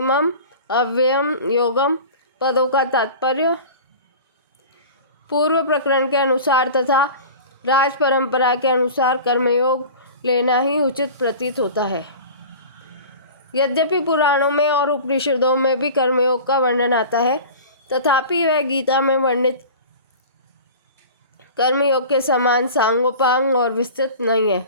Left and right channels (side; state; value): both; inverted; correlation -0.37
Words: अव्ययम योगम पदों का तात्पर्य पूर्व प्रकरण के अनुसार तथा राज परंपरा के अनुसार कर्मयोग लेना ही उचित प्रतीत होता है। यद्यपि पुराणों में और उपनिषदों में भी कर्मयोग का वर्णन आता है, तथापि वह गीता में वर्णित कर्मयोग के समान सांगोपांग और विस्तृत नहीं है।